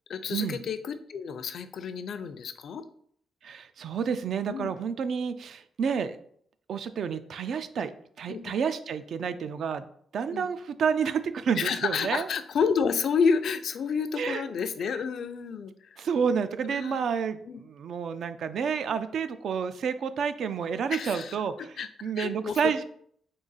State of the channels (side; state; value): both; normal; correlation 0.70